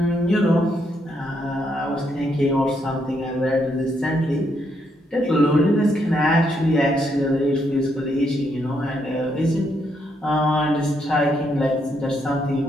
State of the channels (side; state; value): both; normal; correlation 0.76